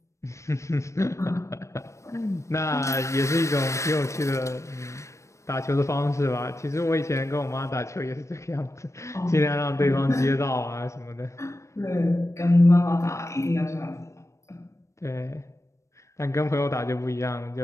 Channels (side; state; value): right; late; 0.15 ms